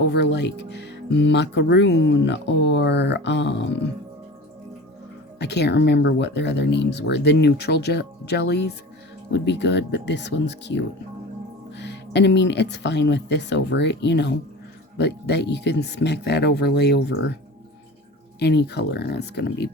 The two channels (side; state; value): both; normal; correlation 0.35